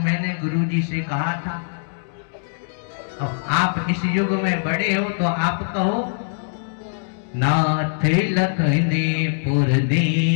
मैंने गुरु जी से कहा था, अब आप इस युग में बड़े हो तो आप कहो, नाथ लखने पुर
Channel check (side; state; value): right; silent; 64 dB below the other